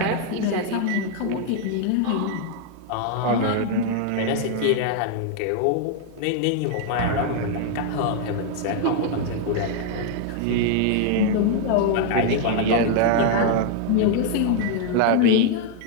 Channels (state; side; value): different; both; correlation 0.00